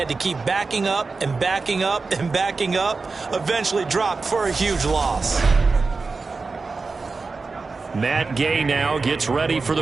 to keep backing up and backing up and backing up. Eventually dropped for a huge loss. Matt Gay now gets ready for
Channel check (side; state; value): left; quieter; 4.1 dB